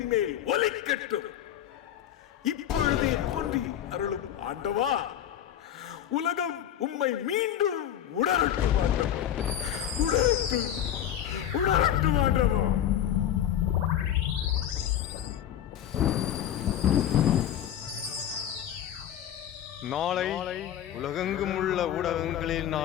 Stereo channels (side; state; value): right; quieter; 10.7 dB